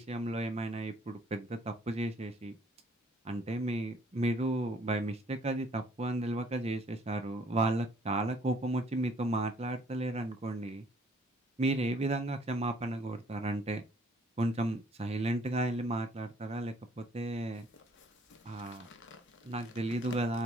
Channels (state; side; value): normal; both; correlation 0.61